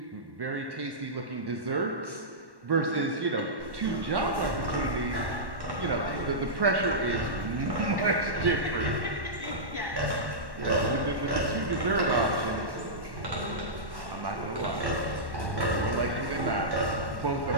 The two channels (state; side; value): late; left; 1.1 ms